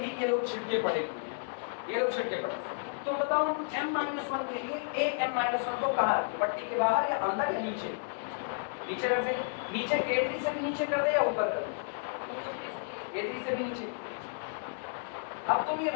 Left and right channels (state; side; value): silent; right; 56 dB below the other